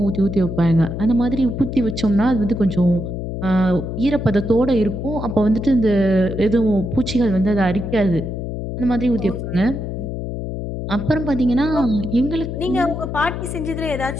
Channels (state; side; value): noise; left; hum, 5 dB below the sound